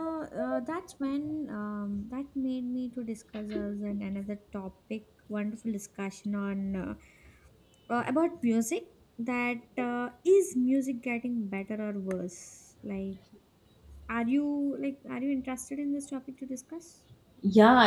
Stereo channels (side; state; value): both; identical; correlation 1.00